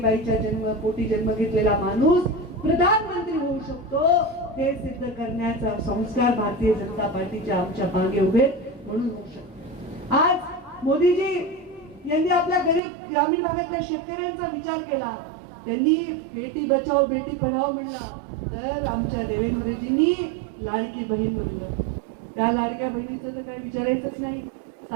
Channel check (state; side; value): drops out; left; at 12.8 s